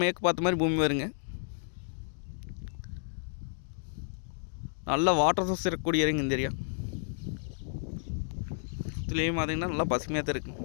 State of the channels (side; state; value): right; silent; digital silence